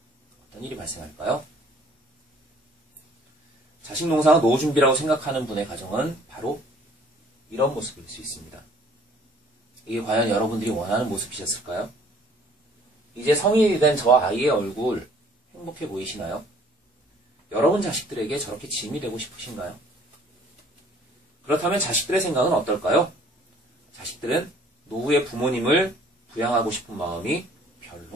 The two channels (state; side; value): normal; both; correlation 0.56